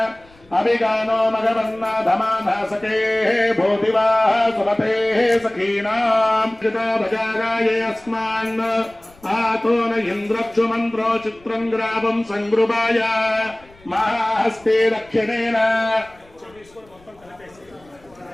अभिगानो मगवन्नाधमानासके भूतिवाः सुमतेः सखीनाम् भजागाये अस्मान् आतो न इन्द्रक्षु मन्त्रो चित्रं ग्रावं सङ्गृभाय महाहस्ते दक्षिणेन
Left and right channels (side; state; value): left; noise; rumble, 28 dB below the sound